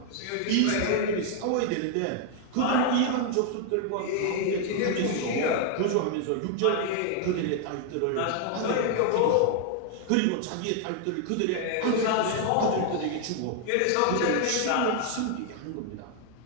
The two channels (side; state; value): both; different; correlation 0.00